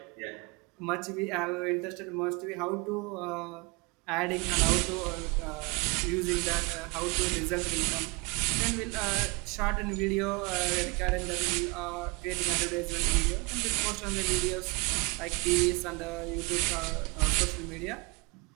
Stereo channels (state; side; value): quieter; left; 28.2 dB